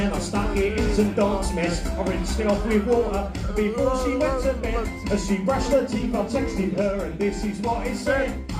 I stuck it in some dog's mess. I rinsed it off with water before she went to bed. As she brushed her teeth, I texted her and this is what it said.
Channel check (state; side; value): identical; both; correlation 1.00